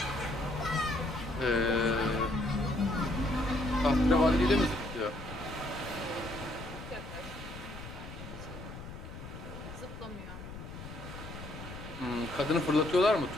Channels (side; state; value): left; noise; rumble, 12 dB below the sound